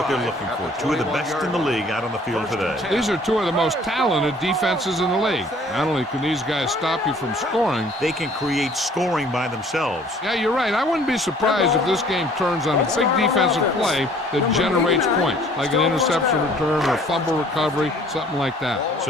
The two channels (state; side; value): normal; both; correlation 0.55